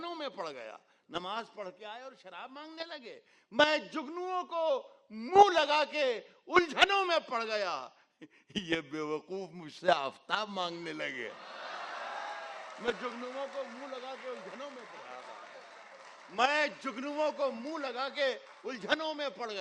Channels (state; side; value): identical; both; correlation 1.00